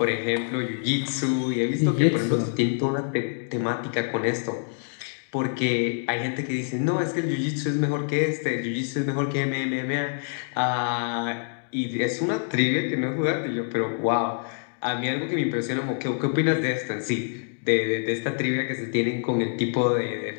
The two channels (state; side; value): silent; right; digital silence